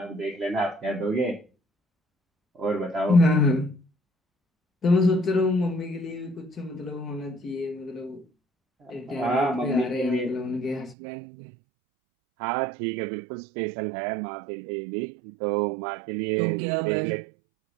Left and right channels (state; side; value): drops out; left; at 11.0 s